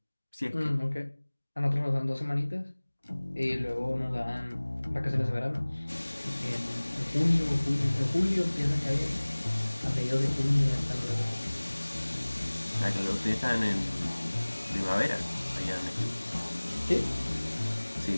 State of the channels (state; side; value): inverted; both; correlation -1.00